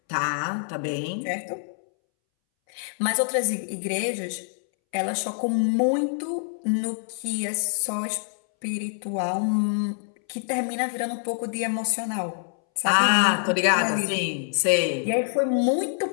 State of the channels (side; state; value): right; silent; 61 dB below the other